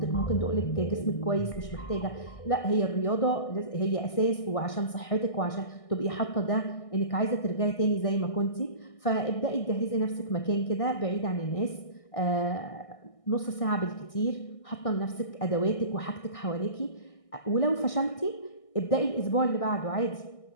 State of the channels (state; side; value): late; right; 1.6 ms